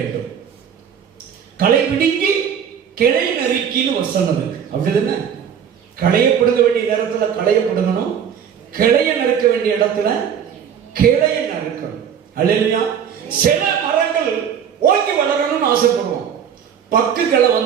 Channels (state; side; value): quieter; left; 8.1 dB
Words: களை பிடுங்கி கிளை நறுக்கின்னு வசனம் இருக்கு. அப்படிதானே? களைய பிடுங்க வேண்டிய நேரத்துல களைய பிடுங்கணும், கிளைய நறுக்க வேண்டிய இடத்துல கிளைய நறுக்கணும். அல்லேலூயா. சில மரங்கள் ஓங்கி வளரணும்னு ஆசைப்படுவோம், பக்கு கிளை